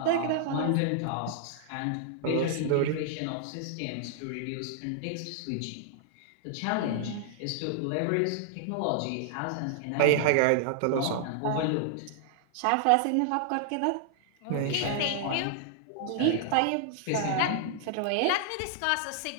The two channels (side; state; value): both; different; correlation -0.01